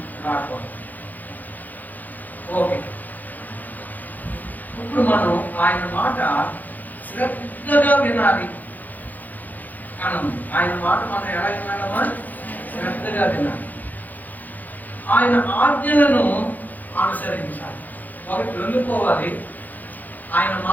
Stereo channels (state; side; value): late; right; 0.083 ms